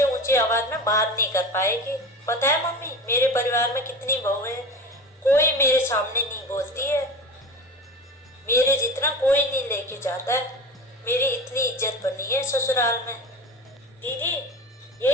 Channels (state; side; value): normal; both; correlation 0.31